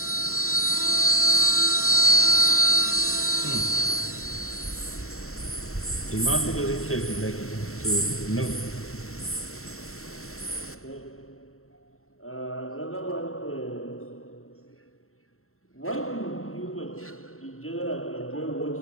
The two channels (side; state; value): right; late; 0.63 ms